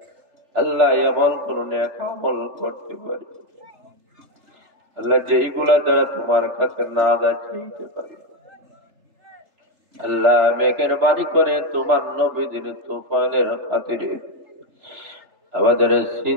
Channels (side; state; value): left; late; 3.3 ms